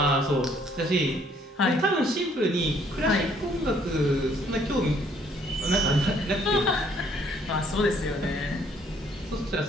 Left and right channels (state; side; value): normal; both; correlation 0.64